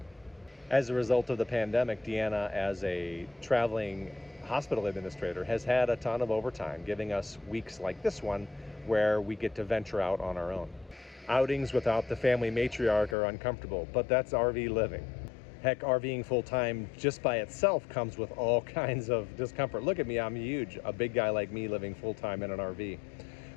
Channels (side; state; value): right; drops out; at 13.2 s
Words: As a result of the pandemic, Deanna, as a traveling hospital administrator, has had a ton of overtime, giving us weeks like this one where we get to venture out on our own. Outings without the family matriarch are uncomfortable, but that's RV living. Heck, RVing full-time just by itself comes with all kinds of discomfort. Look at me, I'm huge, a big guy like me living full-time in an RV.